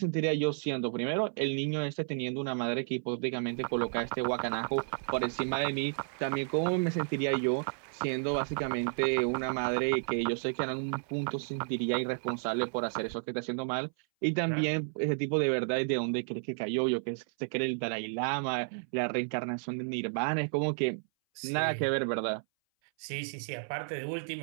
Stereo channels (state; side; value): silent; left; 56 dB below the other